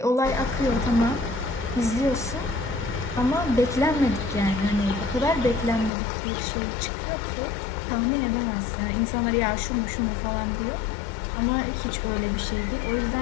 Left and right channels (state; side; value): drops out; right; at 5.9 s